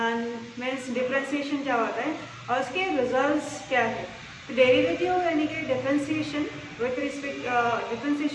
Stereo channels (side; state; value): both; identical; correlation 1.00